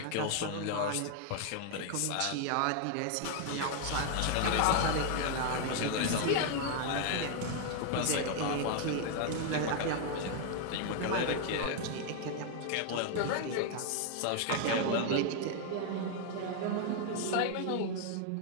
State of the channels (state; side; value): different; both; correlation 0.00